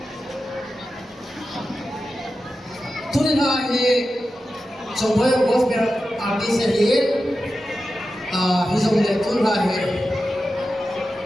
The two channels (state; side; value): normal; both; correlation 0.92